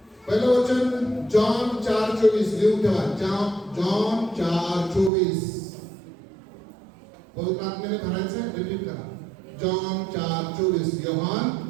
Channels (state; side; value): drops out; left; at 5.1 s